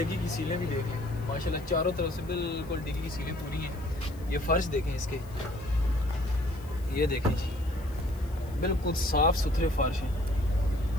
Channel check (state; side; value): noise; left; hiss, 25 dB below the sound